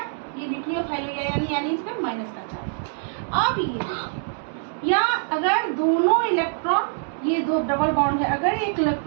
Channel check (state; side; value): silent; left; digital silence